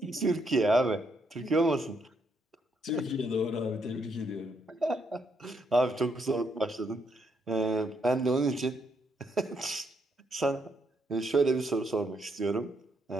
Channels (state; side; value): normal; both; correlation 0.76